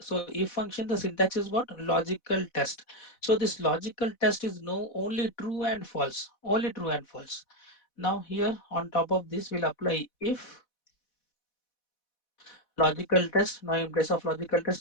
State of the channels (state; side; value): late; right; 4.1 ms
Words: if function, the syntax is what? Logical test. So this logical test is no only true and false, only true and false. Now here on top of this, we'll apply if logical test. Now in place of logical